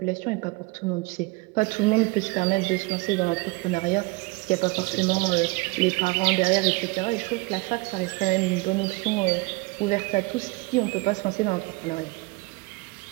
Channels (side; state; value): left; quieter; 24.6 dB